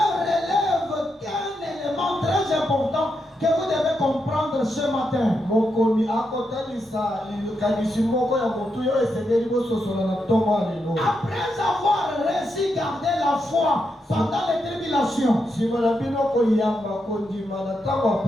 relève qu'un élément très important que vous devez comprendre ce matin. Mokomi akotalisa likanisi moko ya motu oyo esengeli bososola na ntongo ya lelo. Après avoir réussi garder la foi pendant les tribulations, Nsima na bino koyamba kondima na ntango ya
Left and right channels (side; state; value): both; normal; correlation 0.83